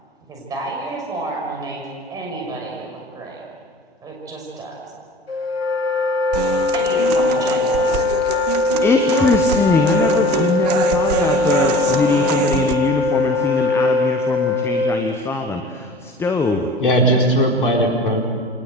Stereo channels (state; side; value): normal; both; correlation 0.42